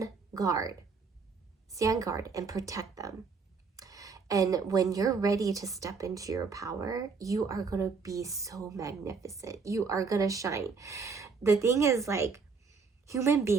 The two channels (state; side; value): quieter; left; 5.0 dB